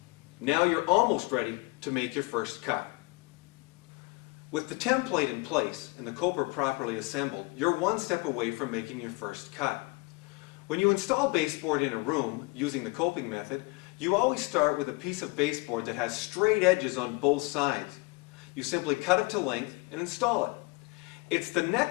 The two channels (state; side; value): quieter; right; 26.0 dB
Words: Now you're almost ready to make your first cut. With the template in place and the coper properly assembled, you're one step away from making your first cut. When you install baseboard in a room using the coping method, you always start with a piece of baseboard that has straight edges on both sides. You simply cut it to length and install it. It's the